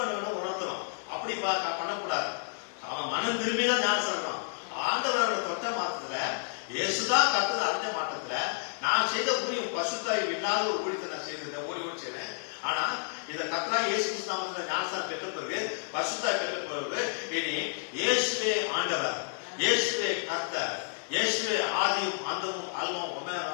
வேணும், உணர்த்தணும். அப்படி பண்ணக்கூடாது. அவன் மனம் திரும்பிதான் ஞானஸ்நானம். ஆண்டவரோட தொட்ட மாற்றத்துல, இயேசுதான் கர்த்தர் அறிஞ்ச மாற்றத்துல நான் செய்த ஊழியம் பசுத்தாய் இல்லாத ஒரு ஊழியத்தை நான் செய்திருந்தேன், ஓடி செய்தேன். ஆனா இந்த கர்த்தராகிய இயேசு கிறிஸ்து நாமத்துல ஞானஸ்நானம் பெற்ற பிறகு, பசுத்தாய் பெற்ற பிறகு, இனி இயேசுவே ஆண்டவர், இயேசுவே கர்த்தர், இயேசுவே ஆதியும் அந்தமும் அல்பமும்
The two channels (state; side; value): silent; right; digital silence